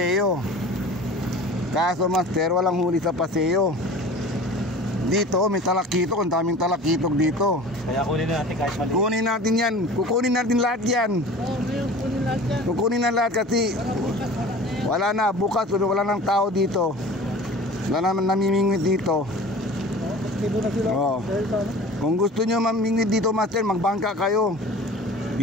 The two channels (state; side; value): normal; both; correlation 0.41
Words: Kaso master, walang huli sa Paseo. Dito, may talakitok. Ang daming talakitok dito. Kaya kunin natin kahit mali. Kunin natin yan. Kukunin natin lahat yan. Oo, ngayon kunin lahat yan. Kukunin na lahat kasi Para bukas wala na yan. wala na. Bukas, wala nang tao dito. Wala naman namimingwit dito. Aktibo na sila. Oo. Dahil sa ano? Kung gusto nyo mamingwit dito master, magbangka kayo.